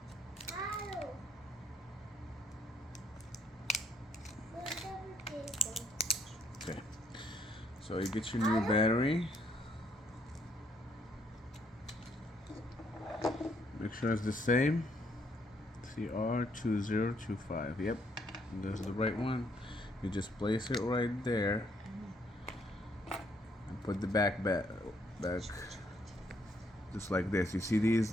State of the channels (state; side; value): normal; both; correlation 0.70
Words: Okay. So you get your new battery. Make sure it's the same. CR2025. Yep, that's the right one. You just place it right there and put the back just like this. You see these